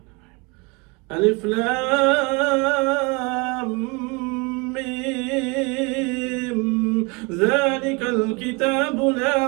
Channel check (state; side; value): quieter; left; 28.7 dB